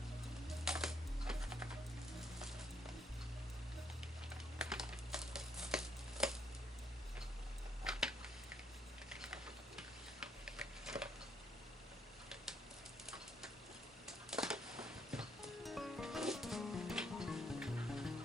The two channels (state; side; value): normal; both; correlation 0.71